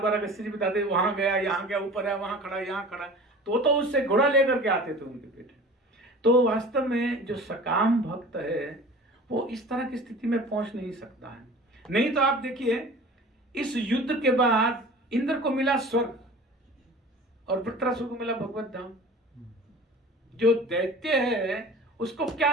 अगस्त्य जी बताते वहां गया, यहाँ गया, ऊपर है, वहां खड़ा, यहाँ खड़ा, तो उससे घोड़ा लेकर के आते थे उनके बेटे। तो वास्तव में जो सकाम भक्त है वो इस तरह की स्थिति में पहुंच नहीं सकता है। नहीं तो आप देखिए, इस युद्ध के बाद इंद्र को मिला स्वर्ग और वृत्रासुर को मिला भगवत धाम। जो दैत्य है उसको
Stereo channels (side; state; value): both; normal; correlation 0.41